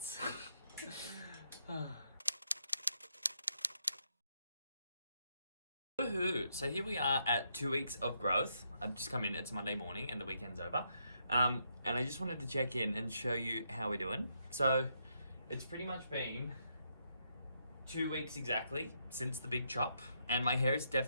Woohoo! So here we are at 2 weeks of growth. I've just come in, it's Monday morning and the weekend's over. And I just wanted to check in and show you how we're doing. So it's pretty much been 2 weeks exactly since the big chop, and my hair is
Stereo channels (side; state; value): both; inverted; correlation -0.78